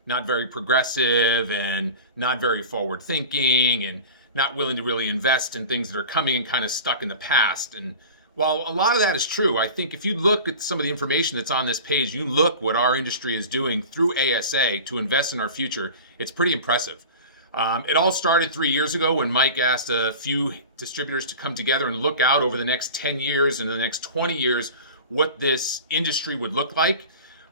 not very progressive and not very forward thinking and not willing to really invest in things that are coming and kind of stuck in the past. And while a lot of that is true, I think if you look at some of the information that's on this page, you look what our industry is doing through ASA to invest in our future, it's pretty impressive. It all started 3 years ago when Mike asked a few distributors to come together and look out over the next 10 years and the next 20 years what this industry would look like.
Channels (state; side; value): inverted; both; correlation -0.35